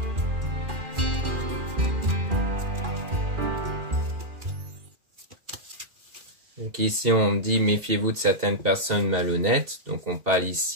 Donc ici, on dit méfiez-vous de certaines personnes malhonnêtes. Donc on parle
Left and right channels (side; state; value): left; late; 2.4 ms